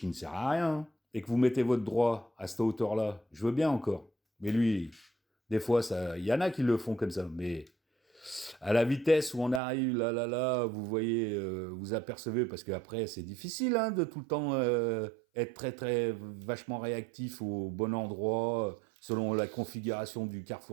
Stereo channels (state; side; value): drops out; left; at 9.6 s